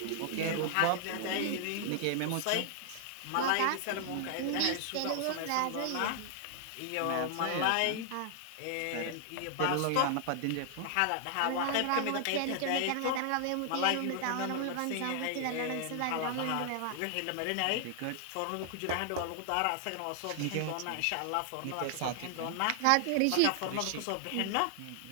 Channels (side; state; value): both; different; correlation 0.00